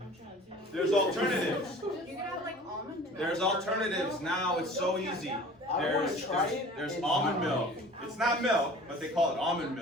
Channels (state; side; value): normal; both; correlation 0.44